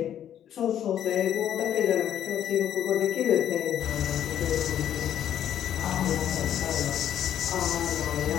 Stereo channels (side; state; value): right; quieter; 10.4 dB